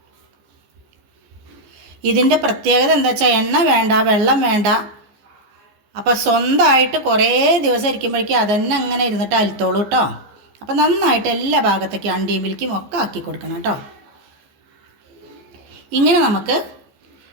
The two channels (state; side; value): late; left; 15 ms